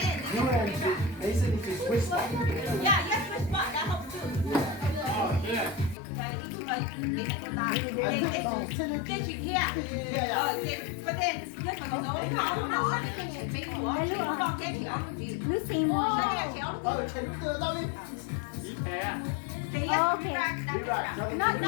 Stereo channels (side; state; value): right; drops out; at 6.0 s